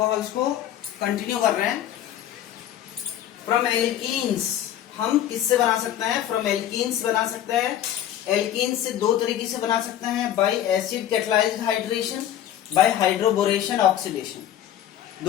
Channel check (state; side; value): quieter; right; 11.3 dB